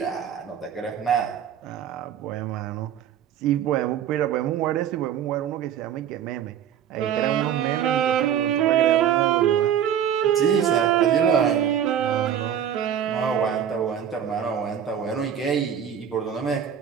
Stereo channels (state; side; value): quieter; left; 9.2 dB